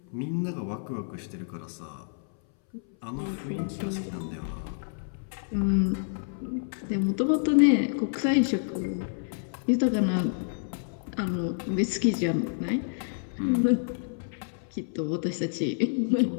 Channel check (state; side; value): silent; right; 59 dB below the other